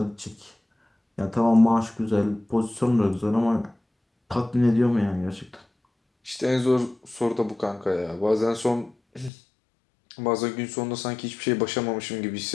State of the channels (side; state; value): right; drops out; at 9.3 s